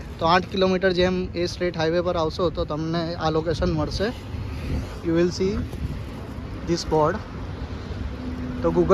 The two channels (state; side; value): identical; both; correlation 1.00